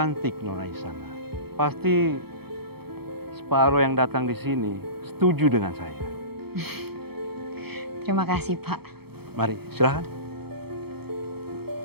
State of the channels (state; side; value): late; left; 0.96 ms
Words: Nona Isana. Pasti separuh yang datang di sini setuju dengan saya. Terima kasih, Pak. Mari, silakan.